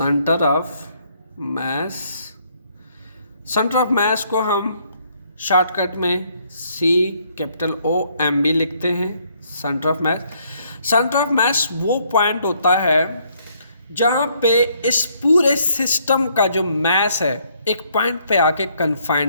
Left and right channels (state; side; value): inverted; both; correlation -0.69